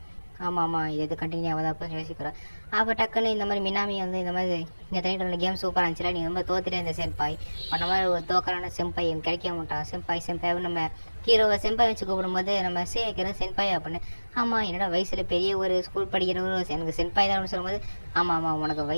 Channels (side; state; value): both; inverted; correlation -1.00